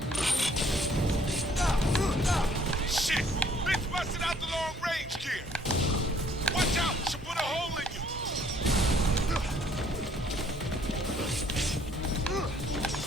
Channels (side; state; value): both; normal; correlation 0.61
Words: Shit! Bitch busted out the long range gear! Watch out! She'll put a hole in you!